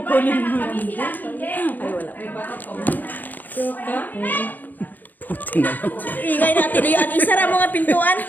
mo. Ingay natin yung isara mo nga pintuan.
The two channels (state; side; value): late; right; 0.085 ms